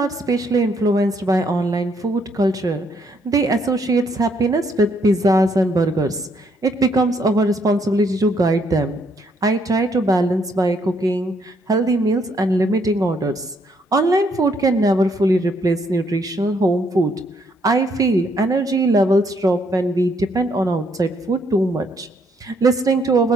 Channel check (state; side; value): normal; both; correlation 0.71